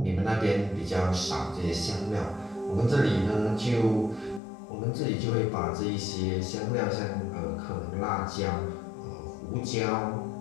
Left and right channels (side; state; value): right; drops out; at 4.4 s